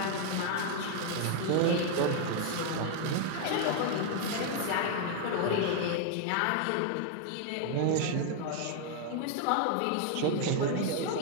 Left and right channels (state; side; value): different; both; correlation 0.00